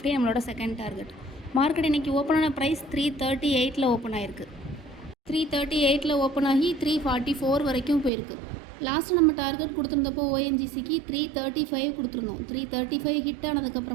நம்மளோட செகண்ட் டார்கெட். மார்க்கெட் இன்றைக்கி ஓப்பன் ஆன ப்ரைஸ் 338 ஓப்பன் ஆகிருக்கு. 338 ஓப்பன் ஆகி 344 வரைக்கும் போயிருக்கு. லாஸ்ட்டு நம்ம டார்கெட் கொடுத்துருந்தப்போ ஓஎன்ஜிசிக்கு 335 கொடுத்துருந்தோம். 335 ஹிட்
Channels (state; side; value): drops out; left; at 8.1 s